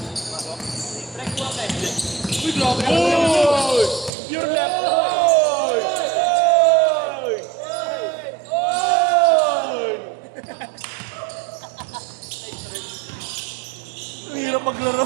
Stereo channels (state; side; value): drops out; left; at 4.1 s